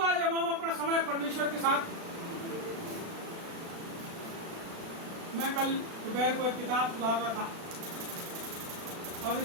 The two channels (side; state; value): left; late; 36 ms